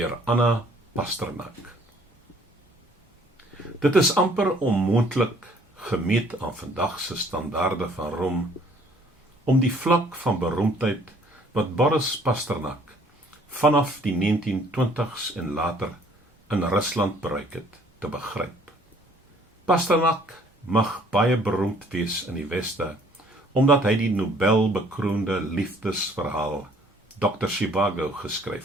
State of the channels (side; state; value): both; normal; correlation 0.59